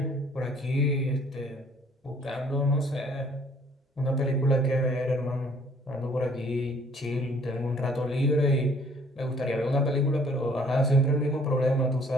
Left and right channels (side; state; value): both; normal; correlation 0.58